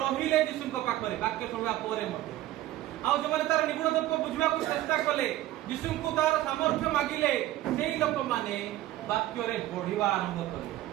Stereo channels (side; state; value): left; quieter; 15.0 dB